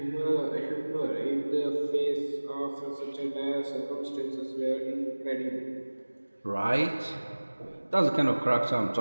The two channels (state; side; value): inverted; both; correlation -1.00